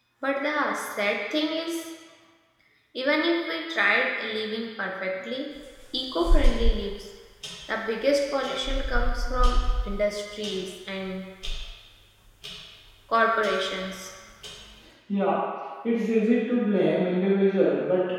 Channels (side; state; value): both; identical; correlation 1.00